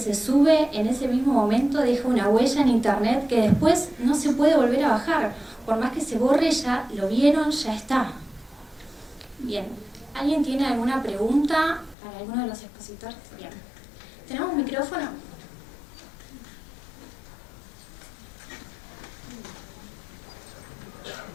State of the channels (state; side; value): drops out; right; at 12.0 s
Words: sube en ese mismo momento deja una huella en internet que después no se puede volver a bajar. Por más que se borre, ya lo vieron, ya está. Bien, ¿alguien tiene alguna pregunta para alguno de los expositores? Bien. ¿Tenemos un micrófono?